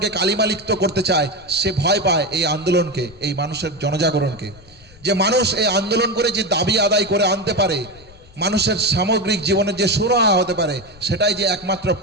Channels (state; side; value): noise; left; rumble, 23 dB below the sound